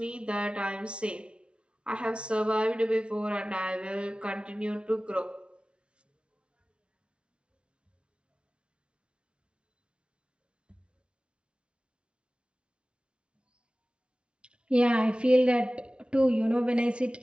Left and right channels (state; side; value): late; left; 0.059 ms